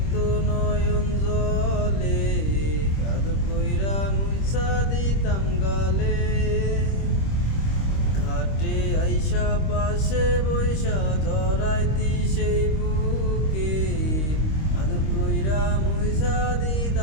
নয়ন জলে, আদর কইরা মুইসা দিতাম গালে। ঘাটে আইসা পাশে বৈশা জড়াইতি সেই বুকে, আদর কইরা মুইসা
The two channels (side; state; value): right; late; 26 ms